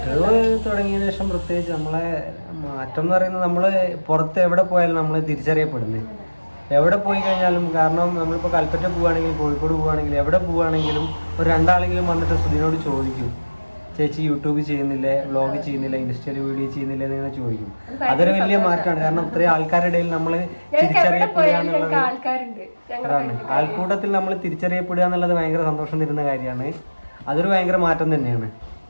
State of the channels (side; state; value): both; inverted; correlation -1.00